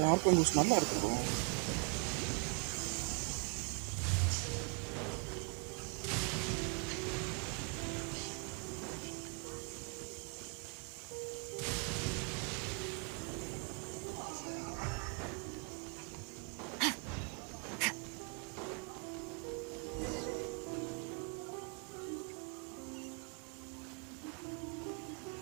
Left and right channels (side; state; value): left; quieter; 36.2 dB